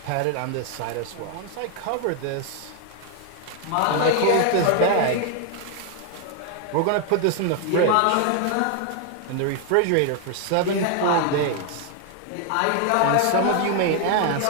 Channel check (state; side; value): different; both; correlation 0.00